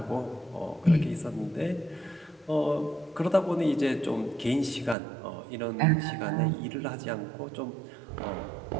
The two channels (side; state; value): left; drops out; at 5.0 s